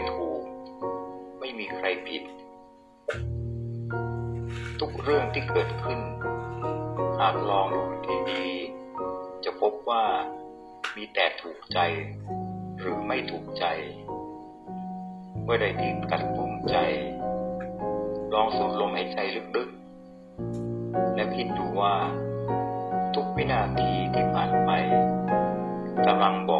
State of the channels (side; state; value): both; identical; correlation 1.00